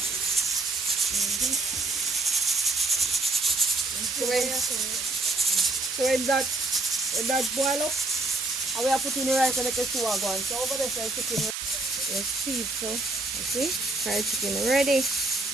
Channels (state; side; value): noise; right; hiss, 5 dB below the sound